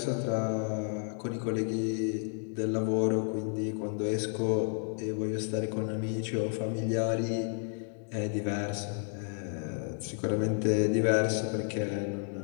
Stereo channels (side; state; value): right; silent; 57 dB below the other